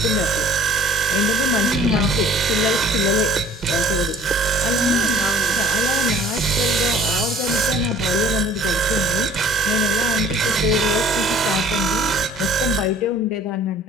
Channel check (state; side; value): normal; both; correlation 0.52